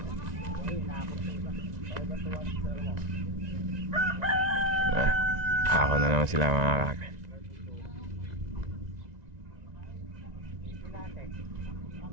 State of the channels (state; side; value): late; left; 2.0 ms